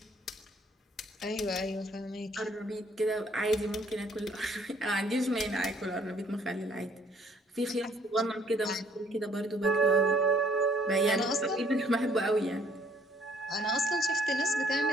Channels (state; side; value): normal; both; correlation 0.62